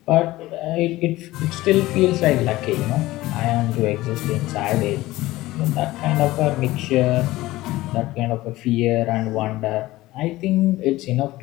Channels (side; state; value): right; quieter; 17.7 dB